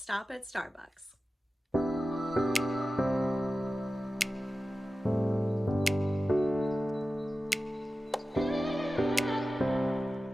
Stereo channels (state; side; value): normal; both; correlation 0.94